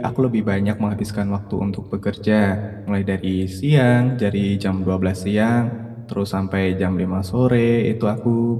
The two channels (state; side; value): identical; both; correlation 1.00